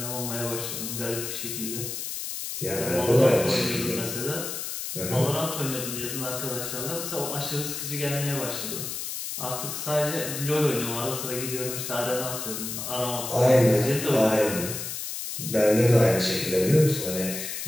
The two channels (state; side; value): noise; left; hiss, 5 dB below the sound